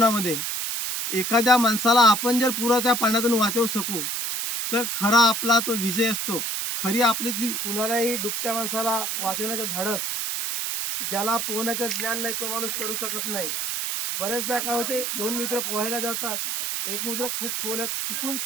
एखाद्या माणसाला आपण जर पुरा त्या पाण्यातून वाचवू शकू, तर खरा आपला तो विजय असतो. खरी आपली ती कुणालाही डुबत्या माणसाला वाचवण्याचं धाडस, ज्याला पोहण्याचं ज्ञान नाही तो माणूस करू शकत नाही. बरेचदा काय होते, दोन मित्र पोहायला जातात, एक मित्र खूप खोल्यात चुकून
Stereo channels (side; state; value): right; noise; hiss, 2 dB below the sound